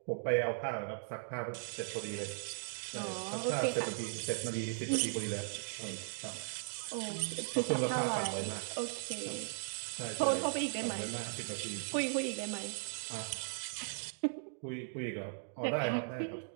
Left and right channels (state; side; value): silent; left; digital silence